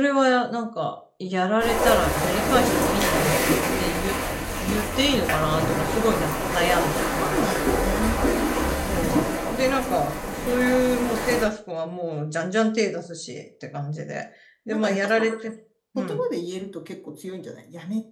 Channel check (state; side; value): identical; both; correlation 1.00